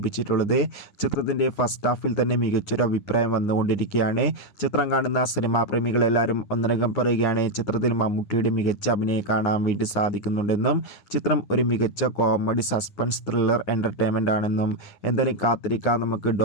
ചിത്രത്തിൻ്റെ ഫസ്റ്റ് ഹാഫിൽ തന്നെ മികച്ചൊരു അഭിപ്രായം വന്നുകൊണ്ടിരിക്കുകയാണ്. ചിത്രം കാണുന്ന സിനിമാ പ്രേമികളെല്ലാവരും ഒന്നടങ്കം പറയുകയാണ് ചിത്രത്തിൽ മമ്മൂട്ടിയുടെ മികച്ച അഭിനയം കാണാൻ വേണ്ടി സാധിക്കുന്നുണ്ടെന്നും ചിത്രം ഒരു മികച്ച കോമഡി സസ്പെൻസ് ത്രില്ലർ എൻ്റർടൈൻമെൻ്റ് ആണെന്നും. എന്തായാലും കാത്തിരിക്കാം നമുക്ക്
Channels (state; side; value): late; right; 9.8 ms